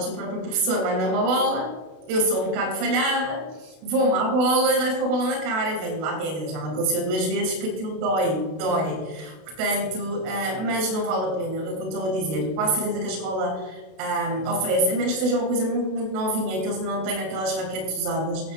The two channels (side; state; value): left; late; 32 ms